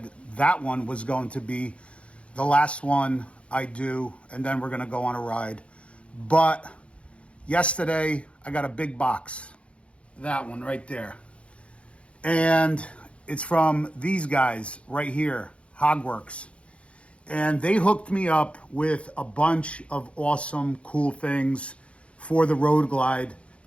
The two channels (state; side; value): late; right; 0.061 ms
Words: that one was going to be the last one I do, and then we're gonna go on a ride. But yesterday I got a big box, that one right there. And it's from these guys right here, Hogworks. And they hooked me up with a bunch of awesome, cool things for the Road Glide.